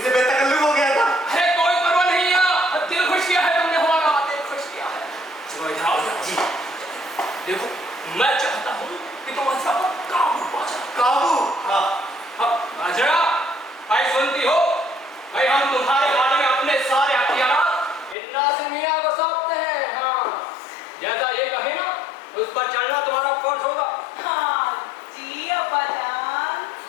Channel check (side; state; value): right; drops out; at 18.2 s